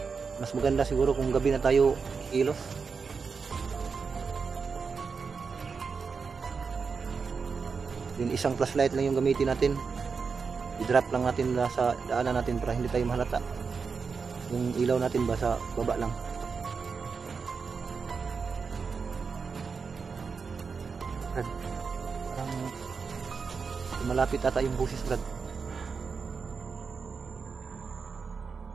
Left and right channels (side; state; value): left; quieter; 5.3 dB